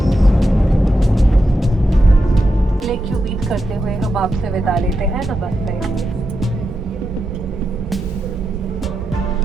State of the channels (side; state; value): both; normal; correlation 0.87